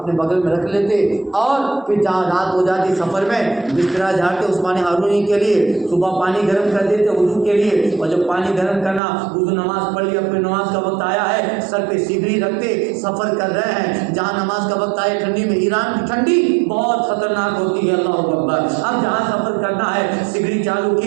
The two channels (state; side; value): drops out; left; at 9.0 s